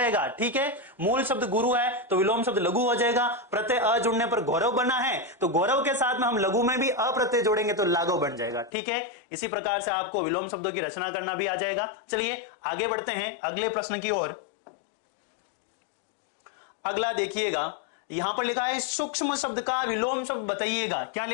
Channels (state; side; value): drops out; right; at 8.7 s